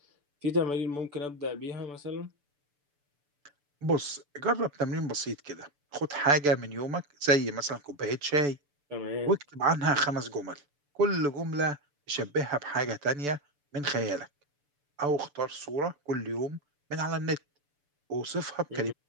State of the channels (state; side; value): late; left; 6.9 ms